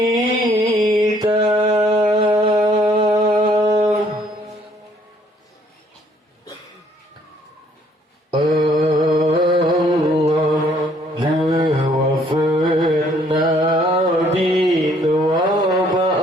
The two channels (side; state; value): both; normal; correlation 0.64